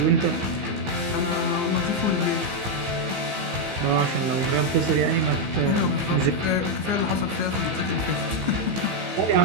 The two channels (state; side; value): late; left; 15 ms